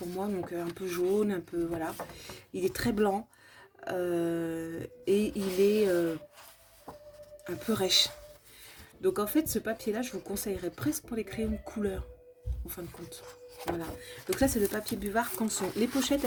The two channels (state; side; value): identical; both; correlation 1.00